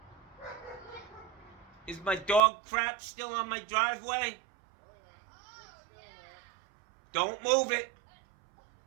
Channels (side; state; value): left; drops out; at 2.4 s